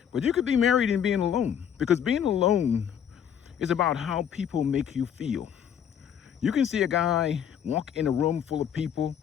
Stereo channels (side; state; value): right; quieter; 8.7 dB